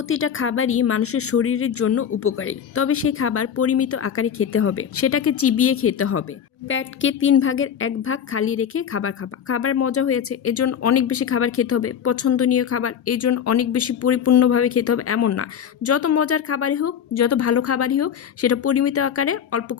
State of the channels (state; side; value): quieter; right; 8.3 dB